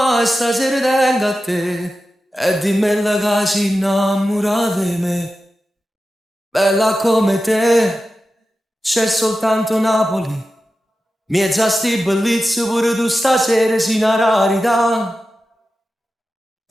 stasera tengo a te e dimmi la che si innamora di me. Bella come te, c'è soltanto Napoli. Miezza sti bellezze pure tu stasera sei una rarità.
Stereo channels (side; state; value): both; normal; correlation 0.93